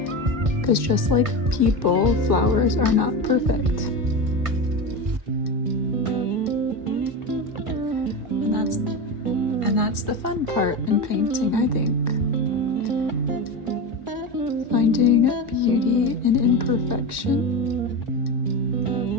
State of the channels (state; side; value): late; left; 1.7 ms